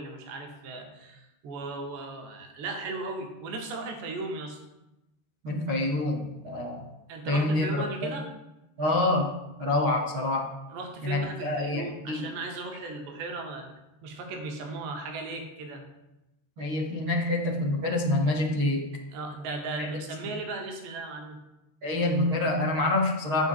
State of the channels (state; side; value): late; left; 13 ms